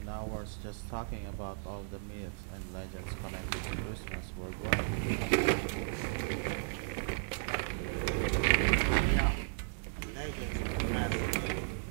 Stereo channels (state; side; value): silent; left; 54 dB below the other